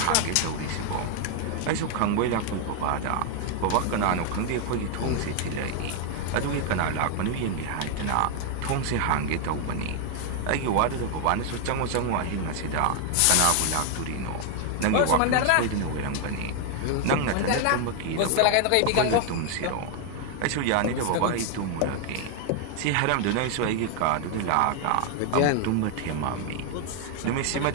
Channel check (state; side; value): different; both; correlation 0.00